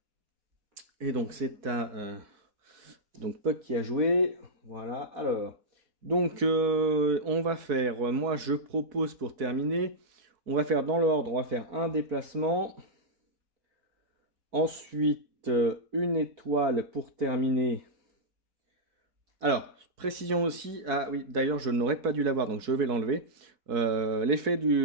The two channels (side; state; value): left; late; 4.1 ms